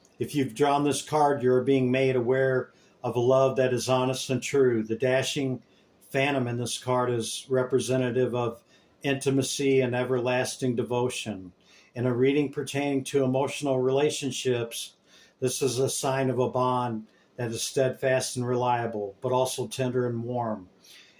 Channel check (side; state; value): both; identical; correlation 1.00